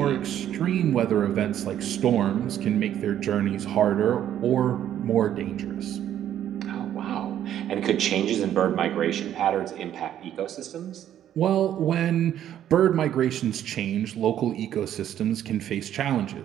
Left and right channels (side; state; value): left; quieter; 10.9 dB